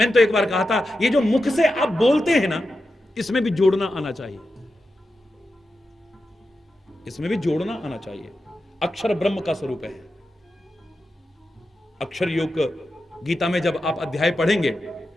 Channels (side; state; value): both; normal; correlation 0.90